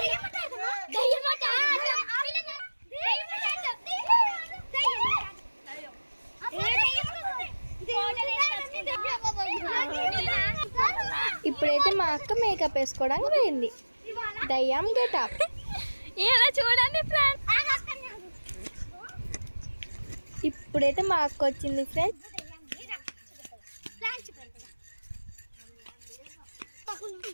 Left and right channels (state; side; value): inverted; both; correlation -1.00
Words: ఇప్పుడైతే మా అక్క మేకప్ వేసుకోవడానికి పోయింది. దయ్యం గెటప్. ఇలా చూడండి ఫ్రెండ్స్. ఇప్పుడైతే మా అక్క వచ్చింది ఫ్రెండ్స్.